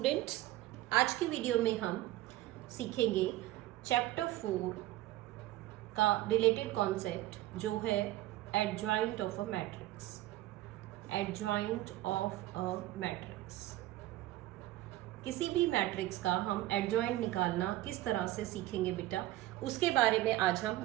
आज की video में हम सीखेंगे चैप्टर 4 का रिलेटेड कॉन्सेप्ट जो है adjoint of a matrix. Adjoint of a matrix, किसी भी मैट्रिक्स का हम एडजॉइंट निकालना किस तरह से सीखेंगे बेटा, उसके बारे में आज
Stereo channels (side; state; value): left; quieter; 15.7 dB